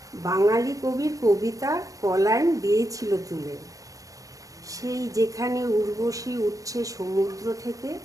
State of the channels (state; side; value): late; left; 0.16 ms